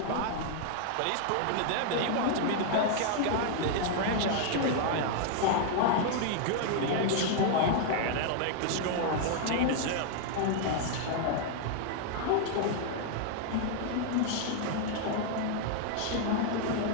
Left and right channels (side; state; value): both; different; correlation 0.00